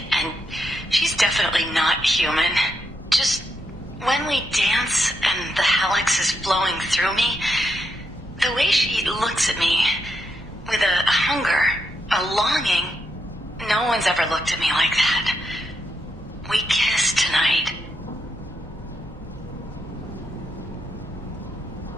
and she's definitely not human. Just when we dance and the Helix is flowing through me, the way she looks at me with a hunger, a longing, no one's ever looked at me like that. We kissed tonight.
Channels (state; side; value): normal; both; correlation 0.82